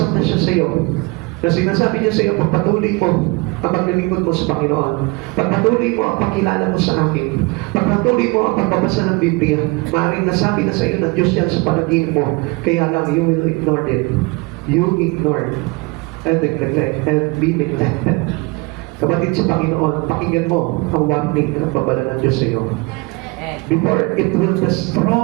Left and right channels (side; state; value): left; quieter; 26.3 dB